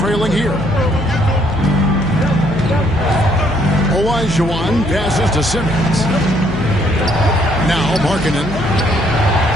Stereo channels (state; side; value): noise; left; hum, 9 dB below the sound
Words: here. Olajuwon passes to Simmons. Now Markkanen.